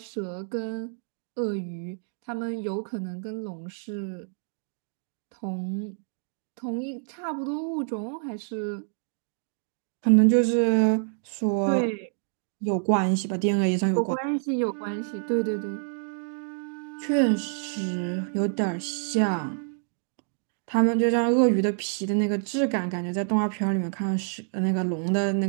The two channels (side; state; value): left; silent; 60 dB below the other